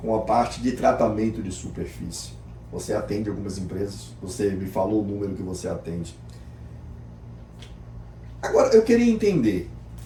a parte de tratamento de superfície. Você atende algumas empresas. Você me falou o número que você atende. Agora, eu queria entender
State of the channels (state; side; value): identical; both; correlation 1.00